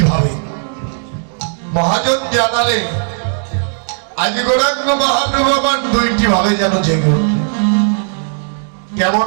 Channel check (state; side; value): silent; left; digital silence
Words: ভাবে। মহাজন জানালে আজি গৌরাঙ্গ মহাপ্রভু আমার দুইটি ভাবে যেন জেগে উঠলে।